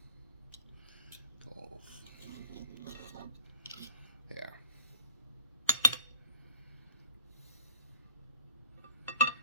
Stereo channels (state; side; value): inverted; both; correlation -0.52